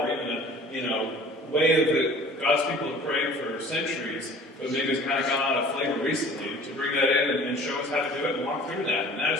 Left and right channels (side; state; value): both; normal; correlation 0.47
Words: or even a, way that God's people have prayed for centuries, but maybe it's kind of gone out of flavor recently, to bring that in and show us how to do it and walk through that. And that